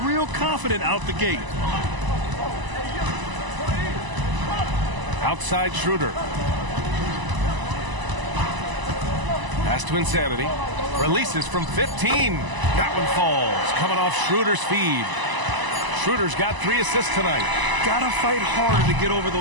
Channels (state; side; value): late; left; 1.0 ms